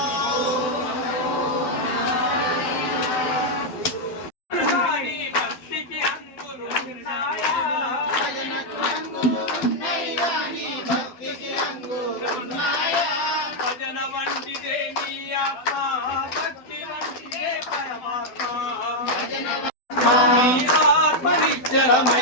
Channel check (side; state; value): right; late; 12 ms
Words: భక్తికి అంగులు ఉన్నాయా? భజనకు అంగులున్నయ్యా, నీ భక్తికి అంగులున్నాయా. భజన వంటిదే నీ ఆత్మ, భక్తి వంటిదే పరమాత్మ. నీ ఆత్మ